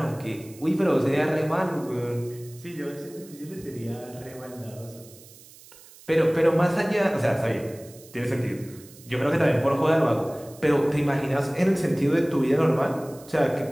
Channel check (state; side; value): noise; right; hiss, 22 dB below the sound